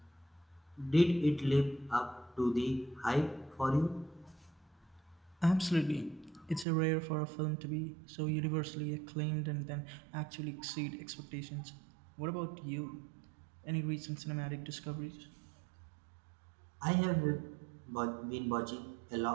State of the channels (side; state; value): left; drops out; at 6.7 s